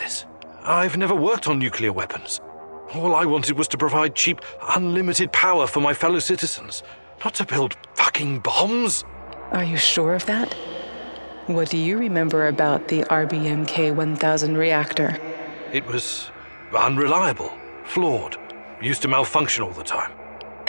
I've never worked on nuclear weapons. All I wanted was to provide cheap, unlimited power for my fellow citizens, not to build fucking bombs. Are you sure of that? What do you remember about the RBMK-1000 reactor? It was unreliable, flawed, used to malfunction all the time.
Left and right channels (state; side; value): inverted; both; correlation -1.00